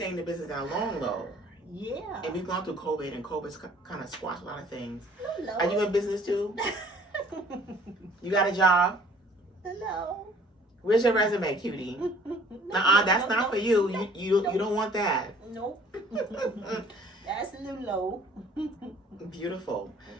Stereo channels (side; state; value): both; normal; correlation 0.55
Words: in the business that long, though. Yeah. And we've gone through COVID, and COVID's kind of squashed a lot of things. Hello. Are you in business too? You got a job? Hello. Where's your resume, cutie? That's not for you. You don't want that. Nope. That's Lulo. Beautiful.